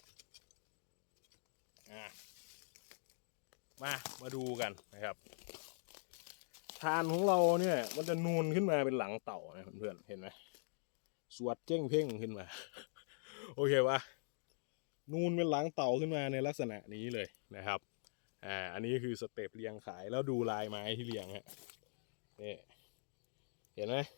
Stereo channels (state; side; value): silent; right; digital silence